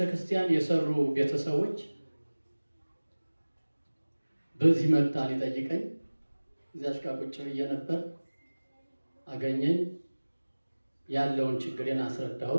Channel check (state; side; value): inverted; both; correlation -1.00